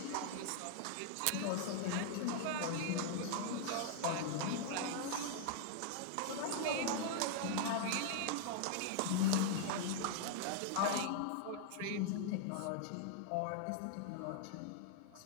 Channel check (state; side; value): different; both; correlation 0.00